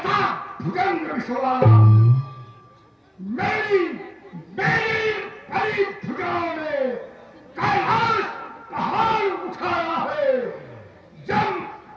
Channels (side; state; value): both; identical; correlation 1.00